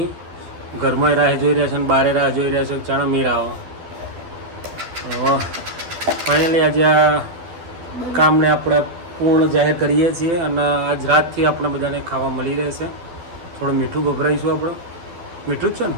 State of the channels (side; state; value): left; late; 12 ms